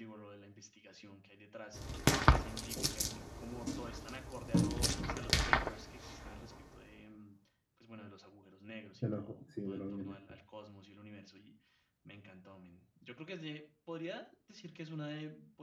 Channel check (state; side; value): identical; both; correlation 1.00